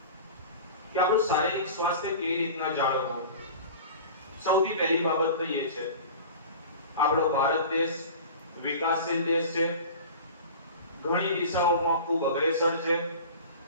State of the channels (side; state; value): both; inverted; correlation -0.37